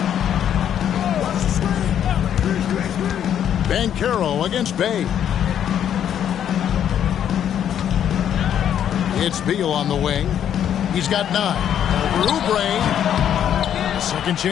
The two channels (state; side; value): quieter; right; 9.7 dB